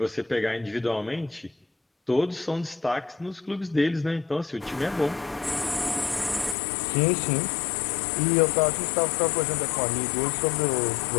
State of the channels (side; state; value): right; drops out; at 6.6 s